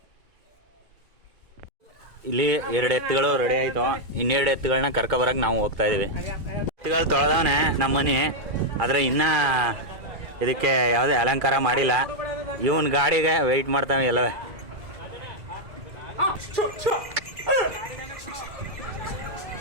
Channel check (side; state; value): left; late; 2.2 ms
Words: ಇಲ್ಲಿ 2 ಎತ್ತುಗಳು ರೆಡಿ ಆಯಿತು. 2 ಎತ್ತುಗಳನ್ನ ಕರ್ಕೊಬರಕ್ಕೆ ನಾವು ಹೋಗ್ತಾ ಇದ್ದೀವಿ. ಎತ್ತುಗಳು ತೊಳೆದವನೆ ನಮ್ಮ ಮನೆ, ಆದರೆ ಇನ್ನೂ ಇದಕ್ಕೆ ಯಾವುದೇ ಅಲಂಕಾರ ಮಾಡಿಲ್ಲ. ಇವನ್ ಗಾಡಿಗೆ ವೆಯ್ಟ್ ಮಾಡ್ತಾವೆ ಎಲ್ಲವೇ.